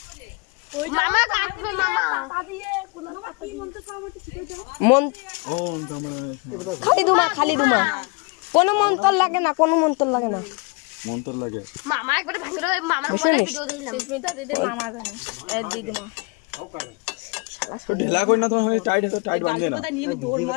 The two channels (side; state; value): right; quieter; 29.4 dB